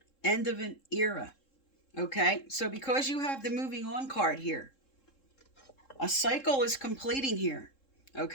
end of an era. Okay, so because you have the moving on card here, a cycle is completing here.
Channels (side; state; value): right; late; 3.7 ms